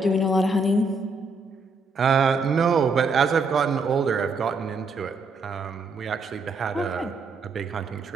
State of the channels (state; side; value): quieter; left; 3.6 dB